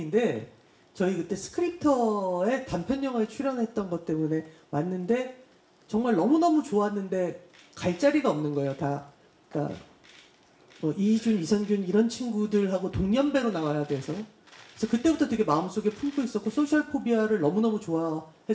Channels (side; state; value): both; identical; correlation 1.00